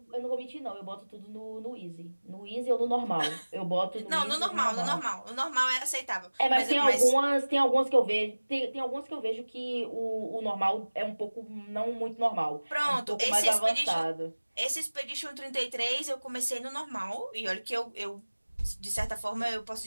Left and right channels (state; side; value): inverted; both; correlation -1.00